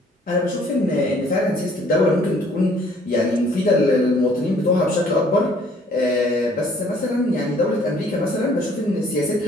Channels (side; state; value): both; normal; correlation 0.59